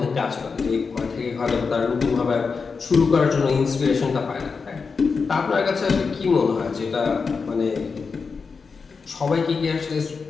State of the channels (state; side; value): quieter; right; 5.0 dB